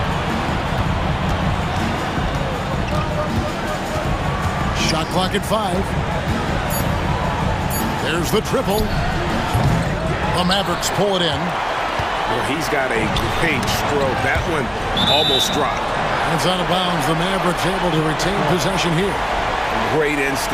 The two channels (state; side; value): identical; both; correlation 1.00